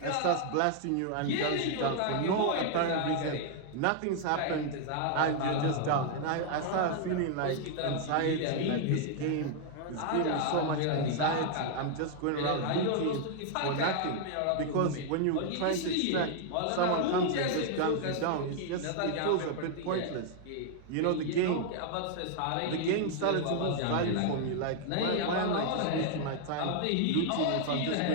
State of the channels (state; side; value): different; both; correlation 0.00